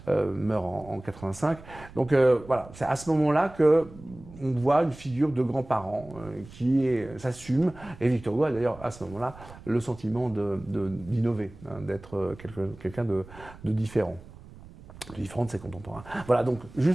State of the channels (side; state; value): right; noise; rumble, 19 dB below the sound